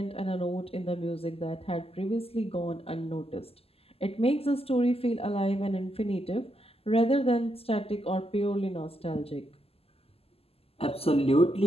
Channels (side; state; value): right; late; 0.29 ms